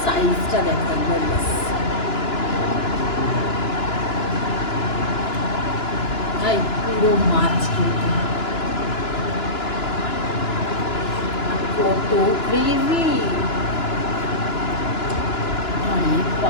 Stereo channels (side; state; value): right; late; 2.9 ms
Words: সাইজটা দেখো একবার, ব্যাস ভাই পুরো মাছ কিন্তু কত গ্রেভি, আরে